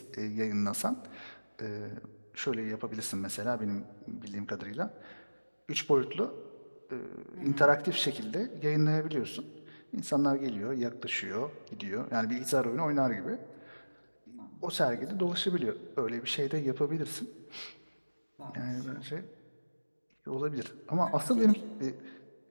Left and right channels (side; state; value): both; inverted; correlation -1.00